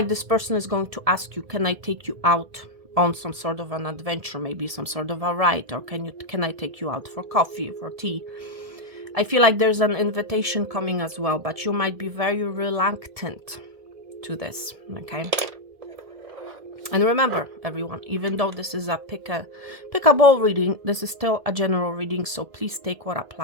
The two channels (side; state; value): left; late; 1.7 ms